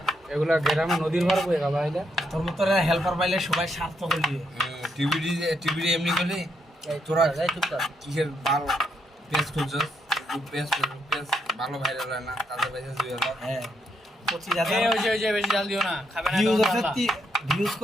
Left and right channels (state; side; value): normal; both; correlation 0.77